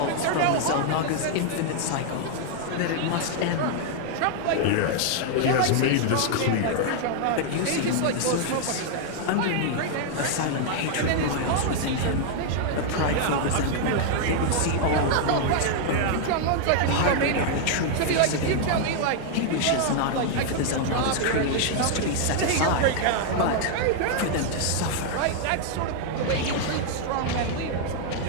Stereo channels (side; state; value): both; different; correlation 0.00